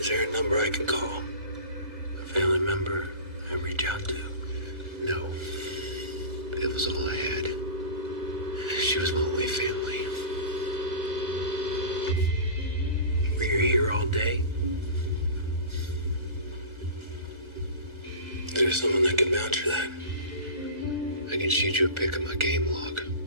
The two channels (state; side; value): late; left; 1.4 ms